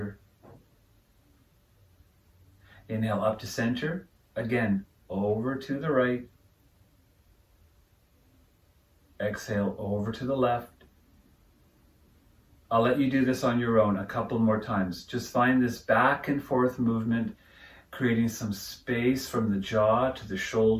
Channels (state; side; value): identical; both; correlation 1.00